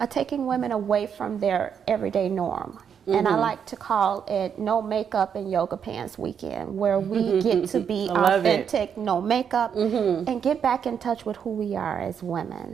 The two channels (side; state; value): left; quieter; 7.6 dB